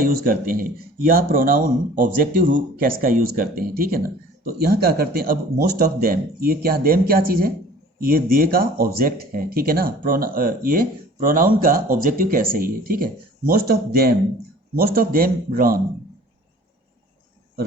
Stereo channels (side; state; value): both; normal; correlation 0.48